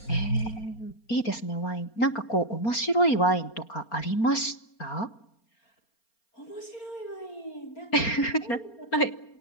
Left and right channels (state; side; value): late; right; 4.3 ms